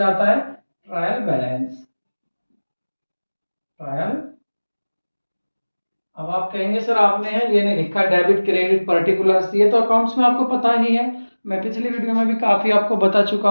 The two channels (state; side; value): inverted; both; correlation -1.00